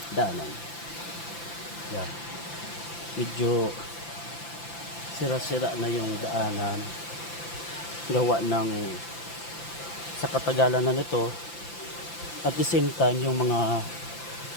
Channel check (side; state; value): right; late; 5.9 ms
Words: daanan. Yan. Medyo sira-sira na yung daanan. Gawa ng sa katagalan na nito. At the same time yung mga